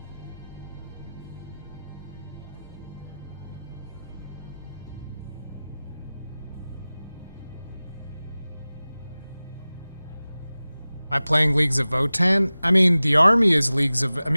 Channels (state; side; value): inverted; both; correlation -0.98